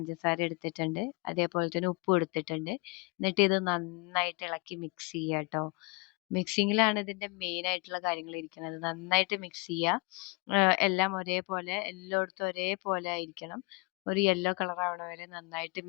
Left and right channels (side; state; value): right; quieter; 27.3 dB